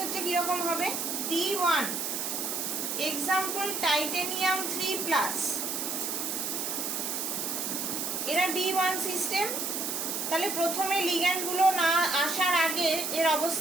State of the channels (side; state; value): right; noise; hiss, 2 dB below the sound